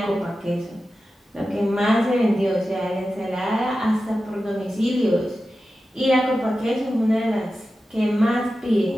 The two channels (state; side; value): normal; both; correlation 0.93